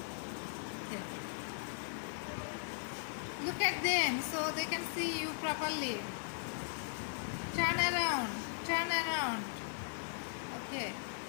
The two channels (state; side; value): silent; right; 52 dB below the other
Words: Okay. Look at them so they can see you properly. Turn around. Turn around. Okay.